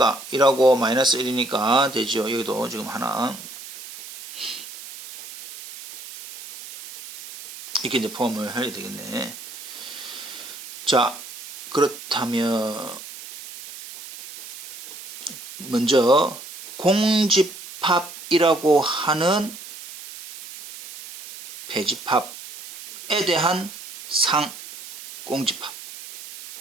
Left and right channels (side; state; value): right; noise; hiss, 12 dB below the sound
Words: 1하고 마이너스 1이니까 되죠. 여기도 지금 하나. 이렇게 이제 포함을 해야 되겠네. 자, 그렇다면 먼저 공집합이라고 하는 배집합에 대한 상, 공집합,